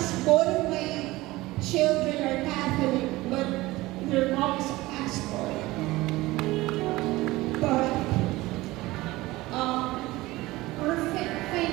both of my children are Catholic, but their mom is a pastor. But we're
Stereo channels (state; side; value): quieter; left; 19.3 dB